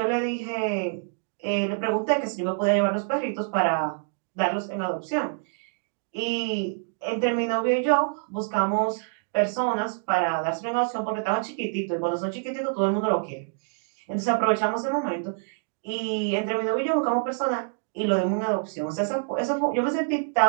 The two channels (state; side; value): silent; left; digital silence